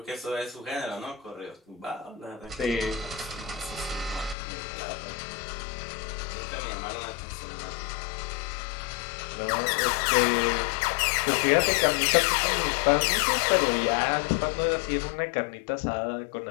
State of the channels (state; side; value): drops out; right; at 4.4 s